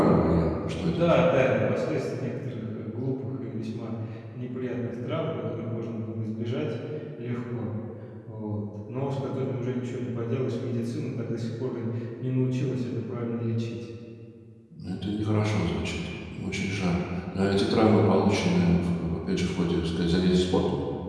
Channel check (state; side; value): identical; both; correlation 1.00